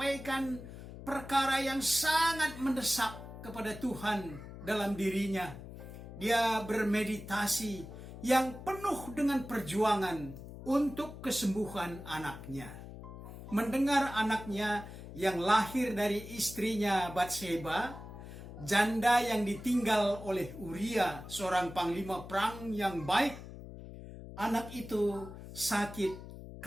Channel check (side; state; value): left; noise; hum, 13 dB below the sound